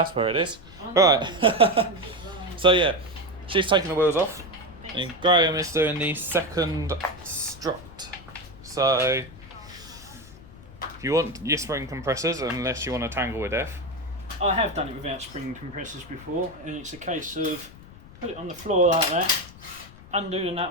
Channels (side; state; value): left; noise; rumble, 19 dB below the sound